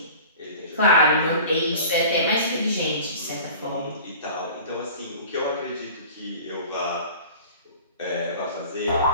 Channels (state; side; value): inverted; both; correlation -0.42